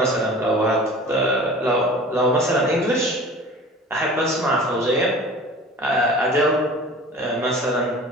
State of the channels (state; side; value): normal; both; correlation 0.41